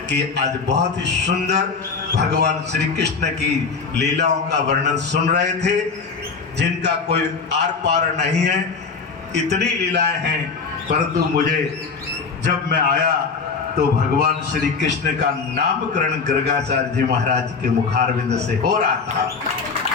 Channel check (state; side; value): quieter; right; 5.0 dB